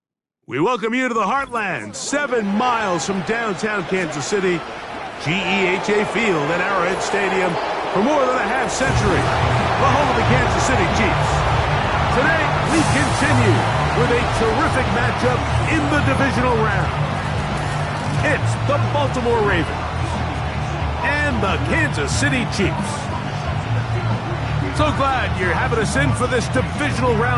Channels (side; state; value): both; identical; correlation 1.00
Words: We welcome you to the Heartland, 7 miles from downtown Kansas City, GEHA Field at Arrowhead Stadium for more than a half-century, the home of the Kansas City Chiefs. Today, we continue with a terrific matchup in the divisional round. It's the Baltimore Ravens and the Kansas City Chiefs. So glad you're having us in for this divisional